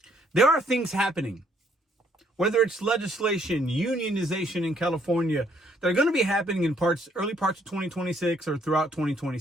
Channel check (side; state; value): both; normal; correlation 0.67